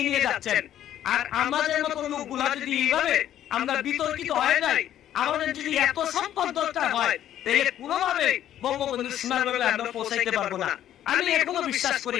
নিয়ে যাচ্ছেন। আর আমাদের মতো লোকগুলা যদি এইভাবে আমরা বিতর্কিত হয়ে যাই, আমাদের যদি এত সম্পদ দরকার হয়, তাহলে কোনোভাবে বঙ্গবন্ধু সীমানাগুলো আমরা পৌঁছাইতে পারবো না। আমি এখনো বিশ্বাস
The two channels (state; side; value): quieter; right; 11.5 dB